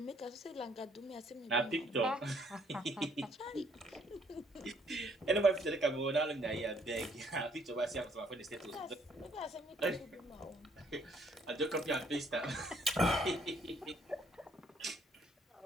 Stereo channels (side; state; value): both; normal; correlation 0.66